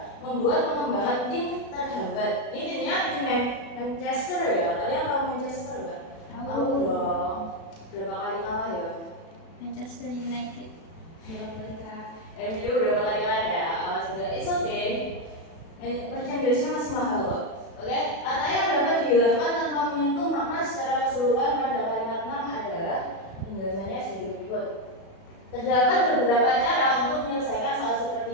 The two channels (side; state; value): right; late; 36 ms